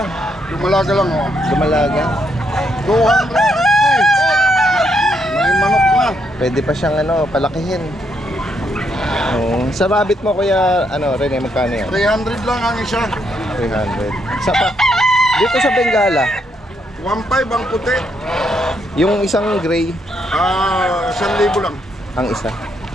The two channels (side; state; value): both; normal; correlation 0.76